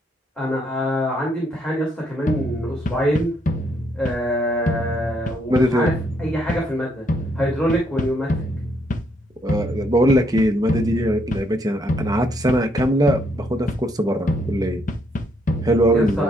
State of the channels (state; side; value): normal; both; correlation 0.72